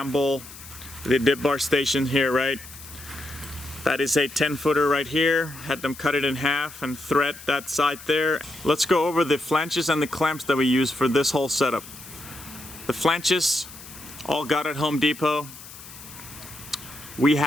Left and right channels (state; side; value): noise; left; hiss, 16 dB below the sound